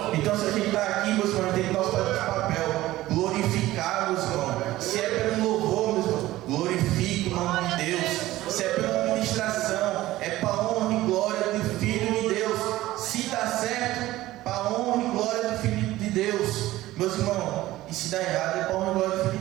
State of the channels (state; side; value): quieter; left; 16.3 dB